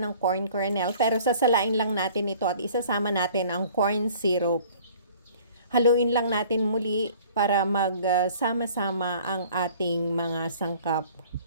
ng corn kernel pero sasalain lang natin ito at isasama natin ang corn syrup. Haluin lang natin muli para magsama-sama ang ating mga sangkap.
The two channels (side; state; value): both; inverted; correlation -0.51